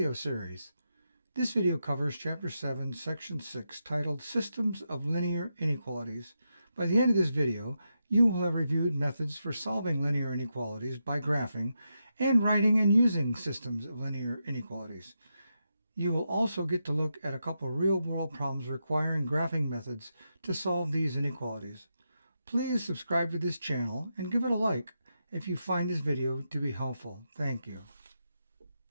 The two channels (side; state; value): both; inverted; correlation -0.86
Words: series. This video covers Chapter 7, Section 6, titled Systems of Linear Inequalities. By the end of this video, you will have reviewed methods for solving linear inequalities by graphing and writing and using systems of linear inequalities. You will also get to look at a couple real-world problems requiring graphing methods to solve these inequalities. Please subscribe to this channel and give it a like if you find this video to be helpful. Thank you.